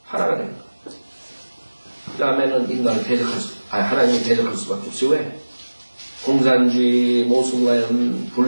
하나가 돼요. 그 다음에는 인간을 하나님을 대적할 수밖에 없어요. 왜? 공산주의, 모순과연,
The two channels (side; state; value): both; inverted; correlation -1.00